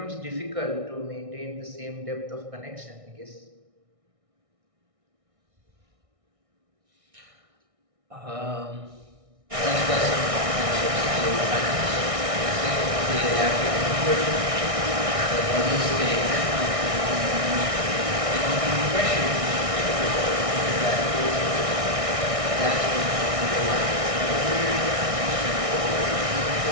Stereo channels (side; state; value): left; late; 1.6 ms